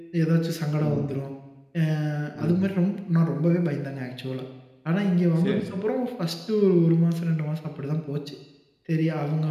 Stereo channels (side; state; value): both; identical; correlation 1.00